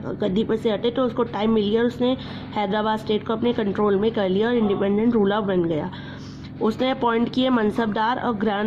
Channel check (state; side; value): identical; both; correlation 1.00